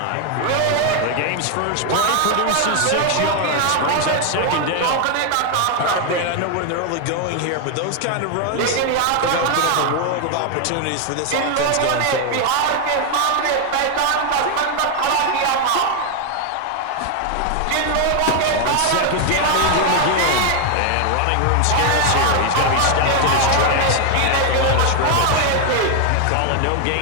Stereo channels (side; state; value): both; different; correlation 0.01